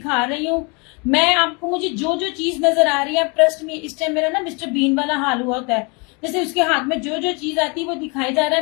रही हूँ। मैं आपको, मुझे जो जो चीज नजर आ रही है, ट्रस्ट में इस टाइम मेरा ना मिस्टर बीन वाला हाल हुआ होता है, जैसे उसके हाथ में जो जो चीज आती है वो दिखाई जा रहा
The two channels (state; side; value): quieter; right; 31.1 dB